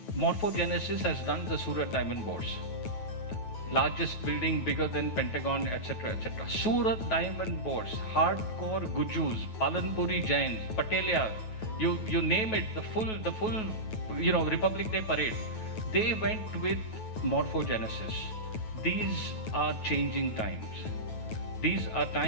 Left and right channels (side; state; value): right; late; 9.2 ms